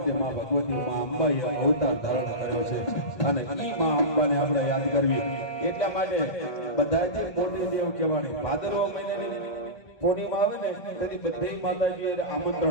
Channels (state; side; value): late; right; 1.2 ms